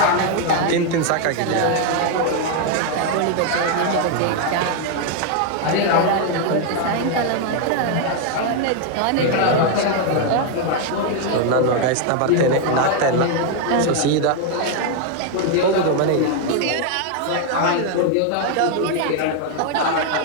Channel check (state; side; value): different; both; correlation 0.01